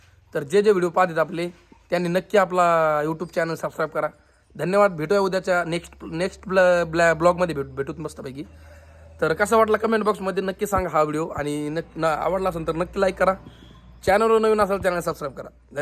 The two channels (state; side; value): identical; both; correlation 1.00